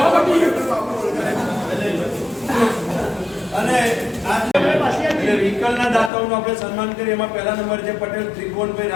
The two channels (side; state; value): right; drops out; at 6.1 s